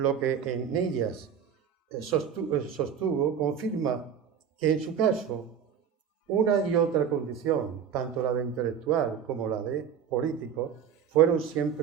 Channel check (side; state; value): left; quieter; 7.9 dB